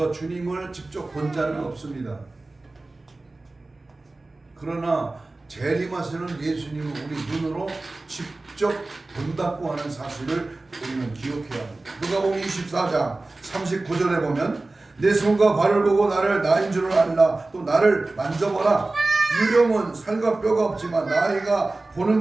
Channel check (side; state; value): left; quieter; 3.1 dB